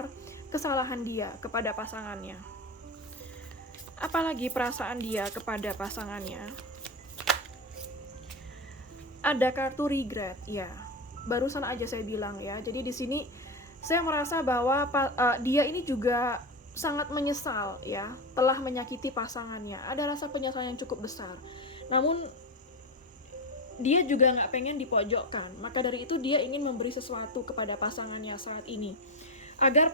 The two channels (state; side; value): normal; both; correlation 0.16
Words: kesalahan dia kepada pasangannya. Apalagi perasaan dia kepada pasangannya. Ada kartu regret, ya. Barusan aja saya bilang ya. Jadi di sini saya merasa bahwa dia ini juga sangat menyesal ya, telah menyakiti pasangannya. Ada rasa penyesalan yang cukup besar. Namun dia juga nggak pengen dipojokkan. Maka dari itu dia ingin memberi sesuatu kepada pasangannya saat ini, agar